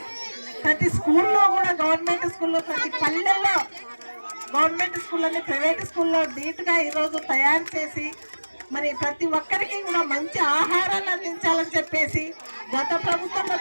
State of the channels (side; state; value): both; inverted; correlation -1.00